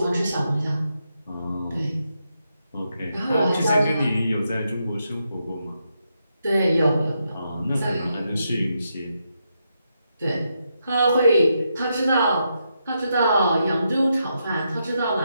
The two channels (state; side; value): inverted; both; correlation -0.82